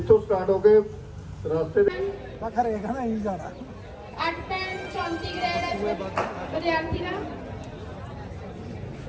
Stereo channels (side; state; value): both; identical; correlation 1.00